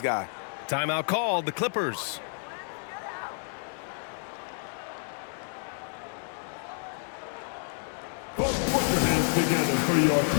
guy. Timeout called, the Clippers. Put your hands together for your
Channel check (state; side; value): silent; right; digital silence